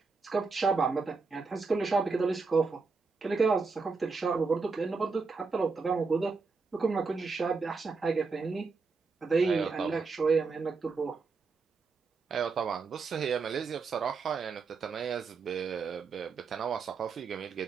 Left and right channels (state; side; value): quieter; left; 4.6 dB